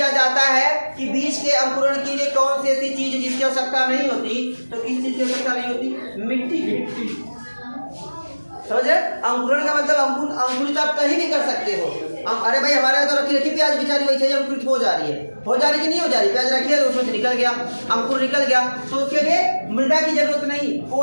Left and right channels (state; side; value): inverted; both; correlation -1.00